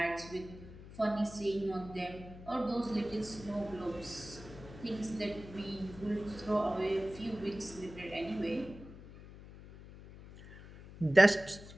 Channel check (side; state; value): left; noise; hum, 16 dB below the sound